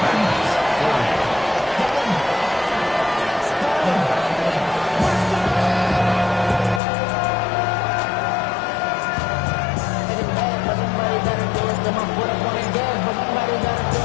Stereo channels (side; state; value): right; drops out; at 6.8 s